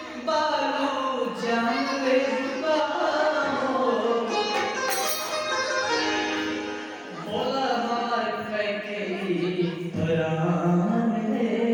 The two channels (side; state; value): both; identical; correlation 1.00